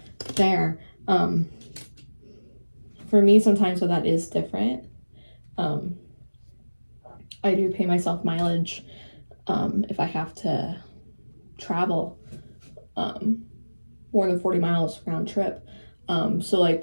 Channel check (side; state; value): both; inverted; correlation -1.00